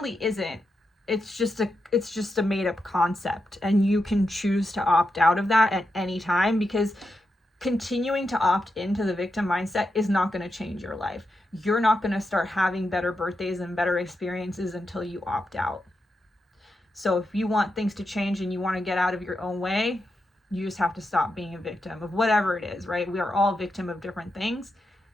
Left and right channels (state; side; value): normal; both; correlation 0.86